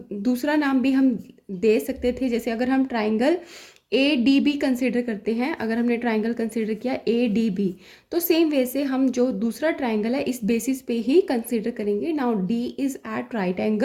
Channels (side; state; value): both; identical; correlation 1.00